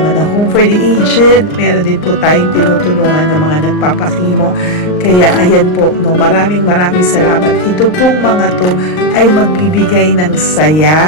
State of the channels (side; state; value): right; late; 39 ms